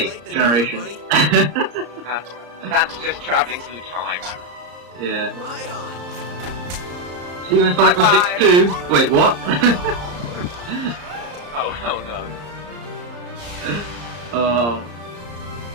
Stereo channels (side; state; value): left; late; 34 ms